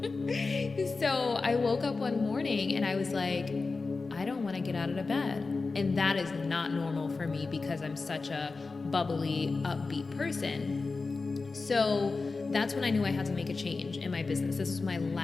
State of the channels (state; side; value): quieter; right; 4.0 dB